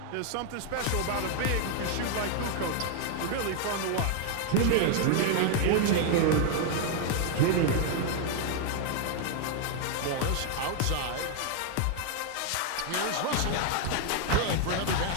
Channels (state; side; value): different; both; correlation 0.00